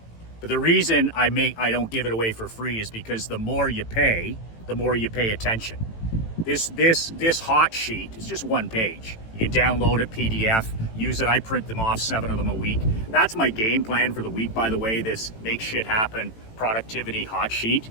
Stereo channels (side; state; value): right; late; 18 ms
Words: But the reason I don't give it away for free is because the more you pay attention. This hot sheet is just one page. You can download it, PDF, use it. I print them off, 7 of them a week. That's my game plan for the week, by the way, this make shit happen productivity hot sheet.